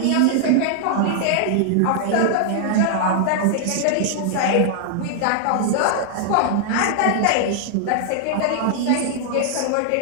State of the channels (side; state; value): both; different; correlation -0.01